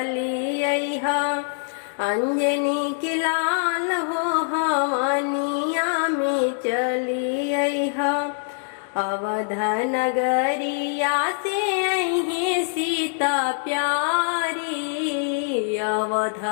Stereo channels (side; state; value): right; silent; 63 dB below the other